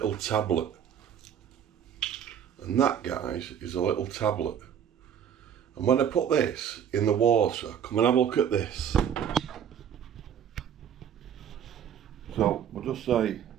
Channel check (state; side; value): quieter; left; 8.8 dB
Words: tablet. And that, guys, is a little tablet. And when I put this in the water, come and have a look at this. So we'll just say